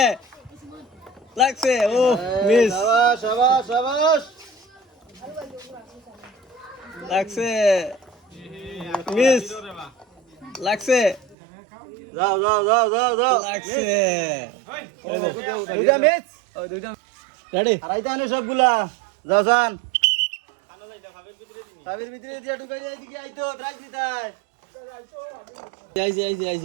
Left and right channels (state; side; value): drops out; left; at 11.4 s